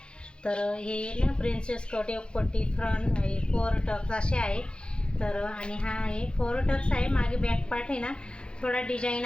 तर हे ना प्रिन्सेस कट, एक पट्टी, फ्रंट आहे, 4 टक्स असे आहे. तर आणि हा आहे 4 टक्स आहे. मागे बॅक पार्ट आहे ना थोडा डिझाईन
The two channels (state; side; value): late; right; 0.053 ms